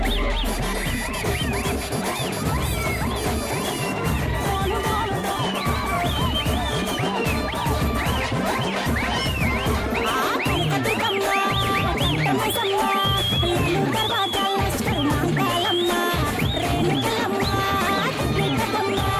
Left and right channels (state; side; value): identical; both; correlation 1.00